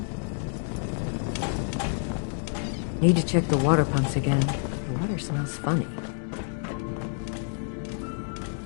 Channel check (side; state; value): right; silent; 56 dB below the other